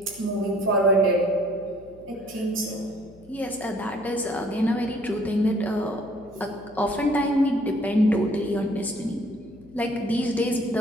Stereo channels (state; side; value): noise; left; hum, 24 dB below the sound